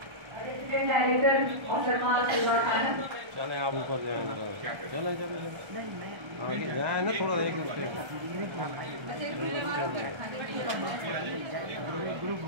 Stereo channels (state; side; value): late; left; 1.3 ms